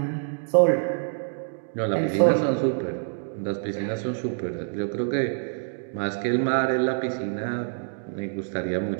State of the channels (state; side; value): silent; left; digital silence